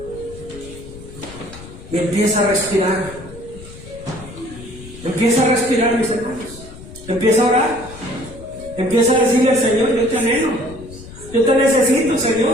y empieza a respirar. Empieza a respirar, mis hermanos. Empieza a orar. Empieza a decirle al Señor: yo te anhelo, yo te necesito,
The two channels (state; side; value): noise; left; rumble, 16 dB below the sound